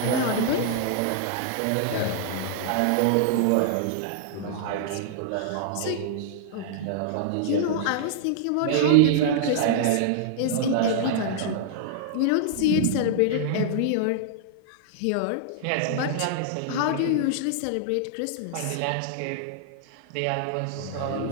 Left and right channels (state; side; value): different; both; correlation -0.01